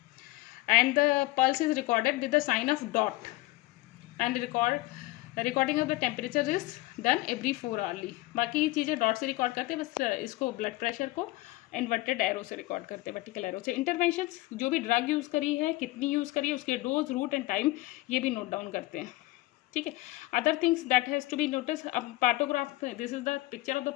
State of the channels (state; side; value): quieter; right; 19.4 dB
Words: and the pulse is recorded with the sign of dot, and recording of the temperature is done every 4 hourly. बाकी चीज़ें dot से record करते हैं, बस इसको blood pressure को inverted arrow से record करते हैं, वर्टिकल एरो से. इंटरवेंशंस, जो भी ड्रग यूज़ करी है, कितनी यूज़ करी है, उसके डोज, रूट एंड टाइम, ये भी नोट डाउन करते हैं. ठीक है. Other things that has to be notice. अब partograph, this is the picture of the